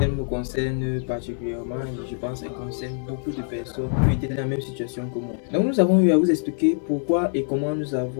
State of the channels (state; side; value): silent; right; 58 dB below the other